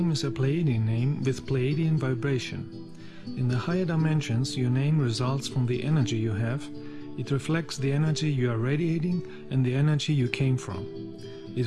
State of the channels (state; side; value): identical; both; correlation 1.00